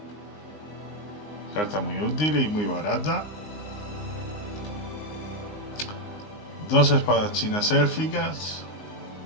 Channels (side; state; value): right; late; 19 ms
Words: carta muy útil y muy barata. 2 espadas chinas élficas.